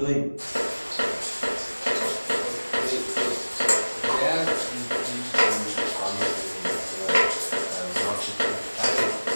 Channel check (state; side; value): inverted; both; correlation -1.00